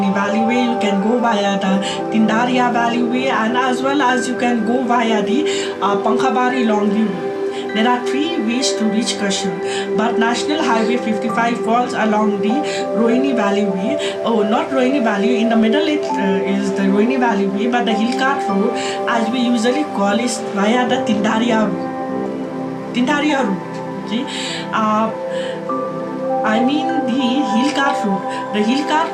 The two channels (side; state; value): both; identical; correlation 1.00